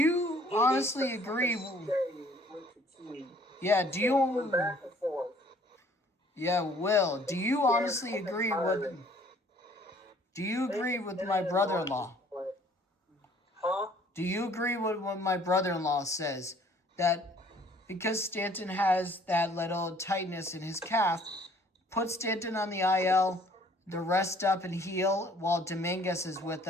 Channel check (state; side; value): normal; both; correlation 0.57